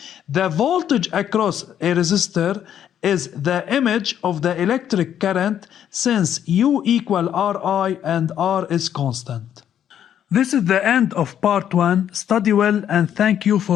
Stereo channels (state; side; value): quieter; right; 9.8 dB